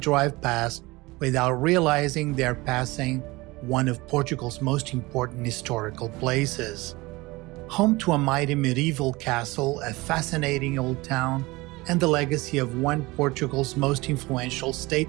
past without realizing they're passing one of Portugal's most important historical places. Home to a mighty medieval castle, a fascinating old town, and the legacy of one of Portugal's most influential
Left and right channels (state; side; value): quieter; left; 21.9 dB